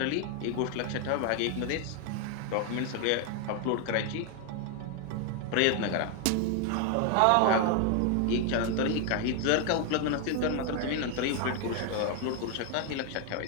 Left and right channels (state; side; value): different; both; correlation 0.01